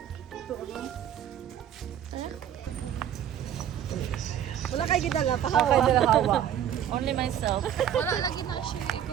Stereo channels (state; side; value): quieter; left; 10.1 dB